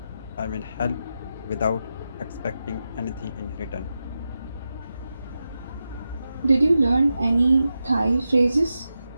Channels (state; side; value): inverted; both; correlation -0.90